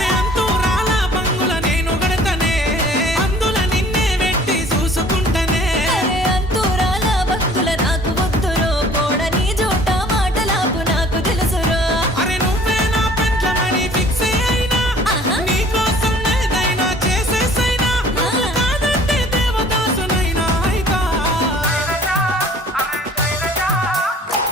అంతూ రాలా బంగుల నేను గడతనే, అందుల నిన్నే వెట్టి చూసుకుంటనే. అరే అంతూరాల భక్తుల నాకు వద్దురో, పోడని జోట మాటలాపు నాకు తెలుసురో. అరే నువ్వే నా పెంట్లమని ఫిక్స్ అయినా, నీకోసం ఏదైనా చేసేసైనా. నువ్వు కాదంటే దేవదాసునైనా అయితా.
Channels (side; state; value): both; normal; correlation 0.52